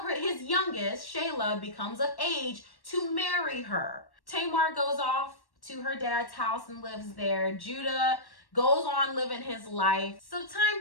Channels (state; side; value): late; right; 1.1 ms